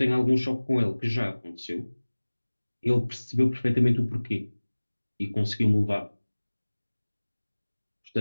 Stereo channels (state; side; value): inverted; both; correlation -1.00